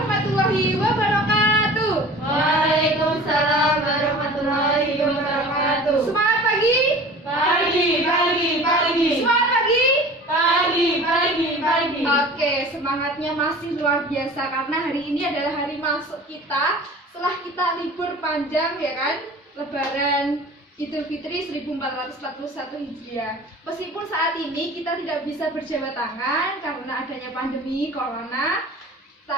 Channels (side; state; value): both; normal; correlation 0.41